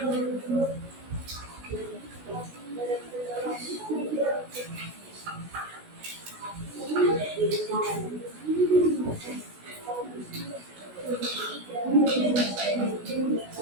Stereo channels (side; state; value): left; late; 16 ms